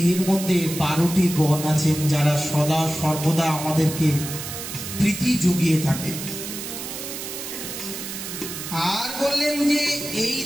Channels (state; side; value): noise; right; hiss, 8 dB below the sound